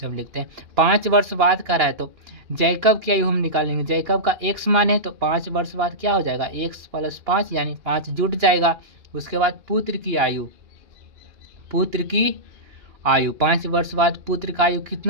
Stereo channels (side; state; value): left; late; 2.4 ms